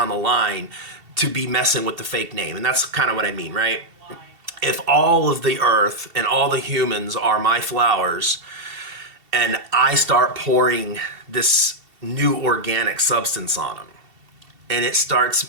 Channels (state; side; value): late; left; 2.7 ms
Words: the line to be messing with the fake name. And that's kind of what I mean, right? If all of the earth and all the humans are my flowers, and I start pouring this new organic substance on them, and it